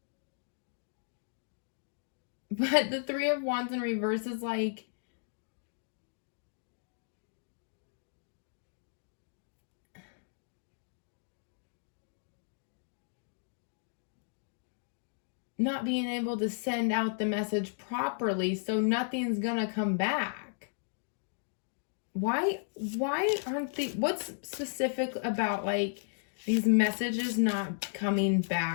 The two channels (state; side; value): silent; right; digital silence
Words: But the Three of Wands in reverse is like, not being able to send out the message properly, so nothing's gonna come back. Why aren't they, what's specific about like these messages not coming